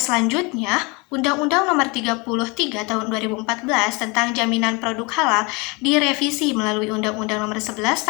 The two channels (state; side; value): quieter; right; 27.9 dB